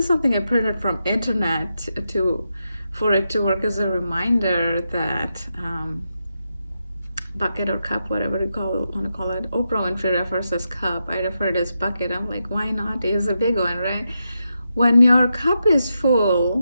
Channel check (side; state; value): both; inverted; correlation -0.86